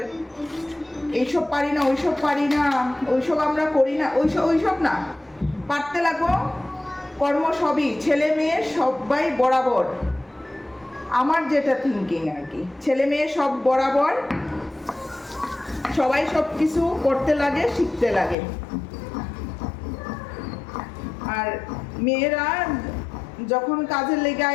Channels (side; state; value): right; drops out; at 18.4 s